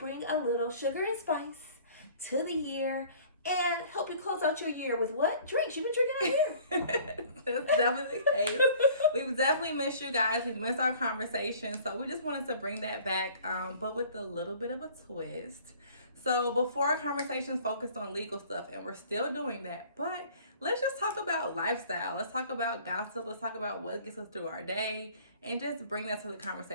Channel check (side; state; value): both; inverted; correlation -0.51